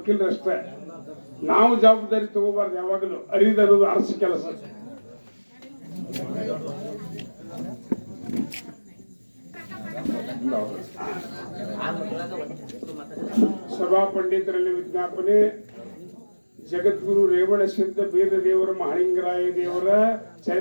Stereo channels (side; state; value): both; inverted; correlation -1.00